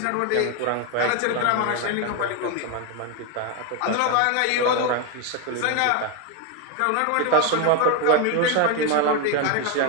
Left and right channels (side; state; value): both; different; correlation 0.02